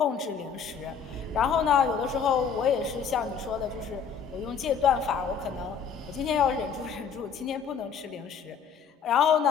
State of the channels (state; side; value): quieter; right; 6.7 dB